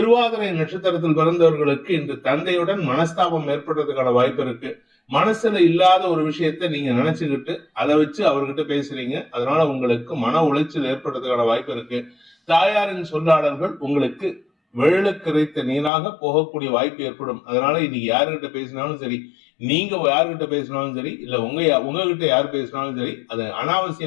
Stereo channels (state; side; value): drops out; right; at 15.9 s